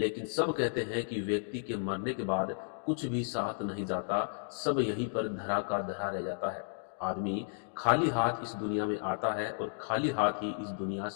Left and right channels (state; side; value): silent; right; digital silence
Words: सब कहते हैं कि व्यक्ति के मरने के बाद कुछ भी साथ नहीं जाता, सब यहीं पर धरा का धरा रह जाता है। आदमी खाली हाथ इस दुनिया में आता है और खाली हाथ ही इस दुनिया